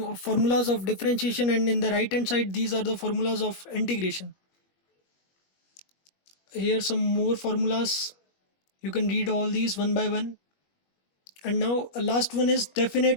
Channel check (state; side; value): late; right; 21 ms